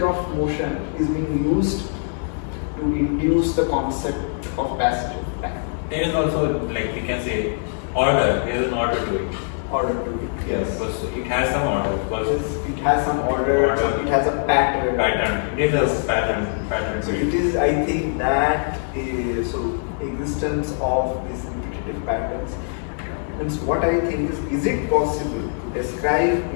of motion is being used to induce the concept of passage of time. There is also, like we can say, order. There is an order to it. Order to it. Yes. Because it has some order. Because It has some order. It has a pattern. It is a pattern. So it is, I think that is, so existence of these repetitive patterns. And what I think is it possible to describe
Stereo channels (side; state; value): right; silent; digital silence